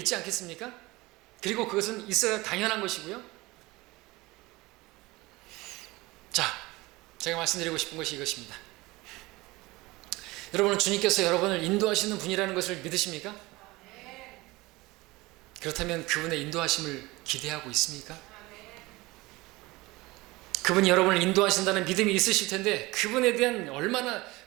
않겠습니까? 그리고 그것은 있어야 당연한 것이고요. 자, 제가 말씀드리고 싶은 것이 이것입니다. 여러분은 주님께서 여러분을 인도하시는 분이라는 것을 믿으십니까? 그렇다면 그분의 인도하심을 기대하고 있습니까? 그분이 여러분을 인도하신다는 믿음이 있으실 텐데 그분에 대한 얼마나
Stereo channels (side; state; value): left; quieter; 21.4 dB